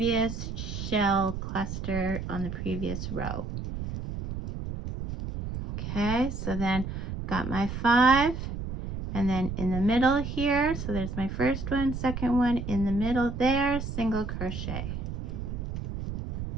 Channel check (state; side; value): noise; right; rumble, 6 dB below the sound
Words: shell cluster on the previous row. Okay, so then I've got my 5, and then in the middle here, so there's my first one, second one, in the middle there, single crochet.